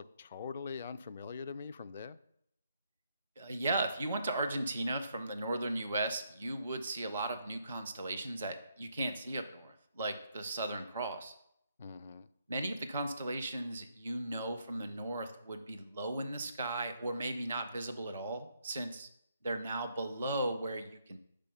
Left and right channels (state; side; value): inverted; both; correlation -0.75